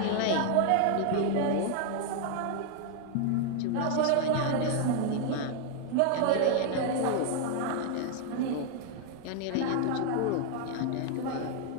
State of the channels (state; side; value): different; both; correlation 0.00